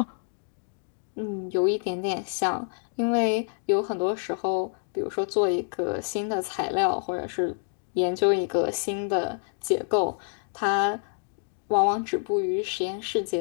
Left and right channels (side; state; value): right; silent; 56 dB below the other